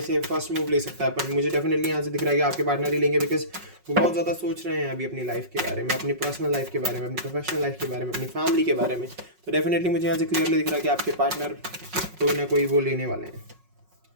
से फर्स्ट मूव ले सकता है। पर मुझे डेफिनेटली यहाँ से दिख रहा है कि आपके पार्टनर ही लेंगे, बिकॉज वो बहुत ज़्यादा सोच रहे हैं अभी अपनी लाइफ के बारे में, अपनी पर्सनल लाइफ के बारे में, अपनी प्रोफेशनल लाइफ के बारे में, अपनी फैमिली के बारे में। तो डेफिनेटली मुझे यहाँ से क्लियरली दिख रहा है कि आपके पार्टनर कोई ना कोई वो लेने वाले हैं।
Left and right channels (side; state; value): left; late; 5.4 ms